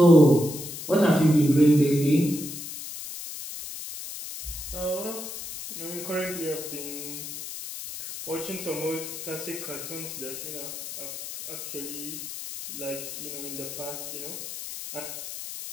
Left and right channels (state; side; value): noise; left; hiss, 9 dB below the sound